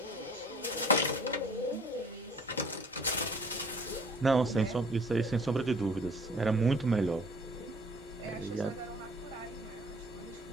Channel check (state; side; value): normal; both; correlation 0.52